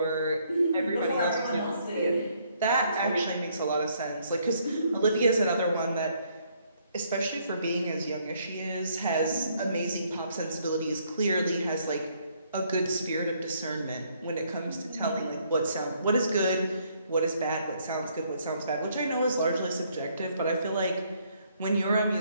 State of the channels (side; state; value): both; inverted; correlation -0.68